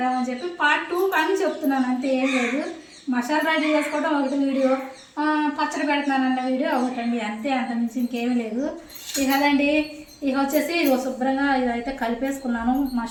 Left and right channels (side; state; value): both; identical; correlation 1.00